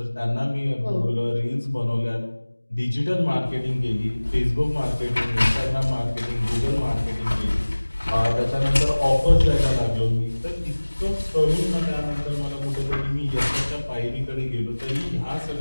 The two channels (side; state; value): both; inverted; correlation -1.00